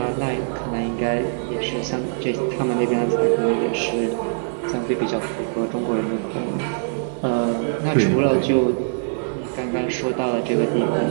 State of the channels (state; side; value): silent; left; digital silence